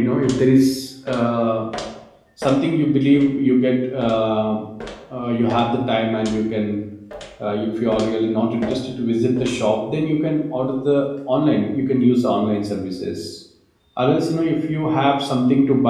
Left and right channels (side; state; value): both; identical; correlation 1.00